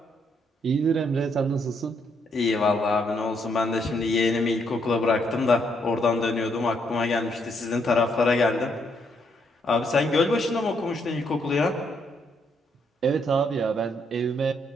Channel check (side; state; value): both; normal; correlation 0.74